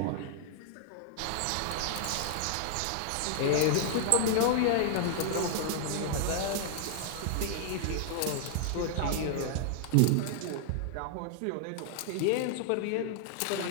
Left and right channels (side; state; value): both; different; correlation -0.01